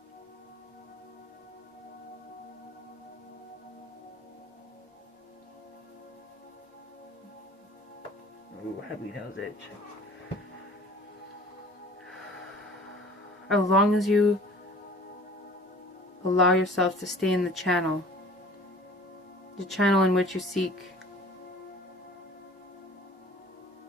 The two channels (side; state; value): both; normal; correlation 0.47